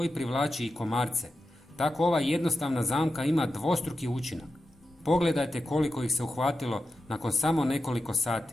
privlači i komarce. Tako ova jednostavna zamka ima dvostruki učinak. Pogledajte koliko ih se uhvatilo nakon samo nekoliko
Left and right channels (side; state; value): both; normal; correlation 0.91